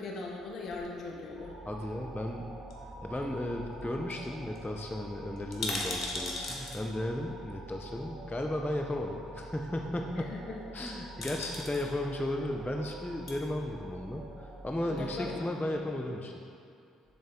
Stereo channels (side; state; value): both; normal; correlation 0.82